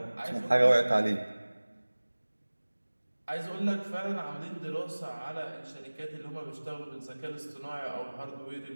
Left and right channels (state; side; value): inverted; both; correlation -1.00